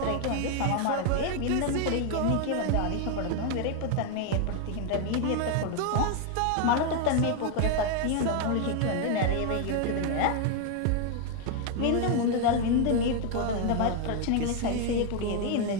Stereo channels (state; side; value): different; both; correlation 0.01